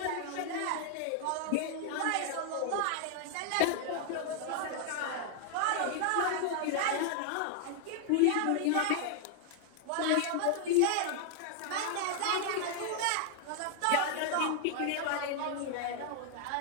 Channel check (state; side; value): different; both; correlation 0.00